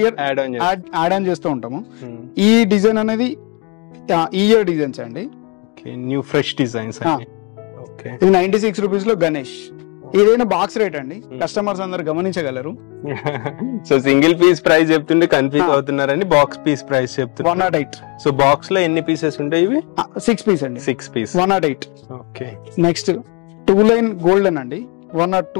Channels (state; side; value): quieter; right; 31.1 dB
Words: ఇయర్ యాడ్ ఆన్ చేస్తూ ఉంటాము. ఈ డిజైన్ అనేది ఈ ఇయర్ డిజైన్స్ అండి, న్యూ ఫ్రెష్ డిజైన్స్. ఇది 96 రూపీస్ లో గణేష్. ఏదైనా బాక్స్ రేట్ అండి, కస్టమర్స్ అందరు గమనించగలరు. సో సింగిల్ పీస్ ప్రైస్ చెప్తుంటే కన్ఫ్యూజ్ అవుతున్నారండి. బాక్స్ పీస్ ప్రైస్ చెప్తున్నారు 108. సో బాక్స్ లో ఎన్ని పీసెస్ ఉంటాయి? ఇవి 6 పీస్ అండి. 6 piece 108. Okay, next 2 line golden అండి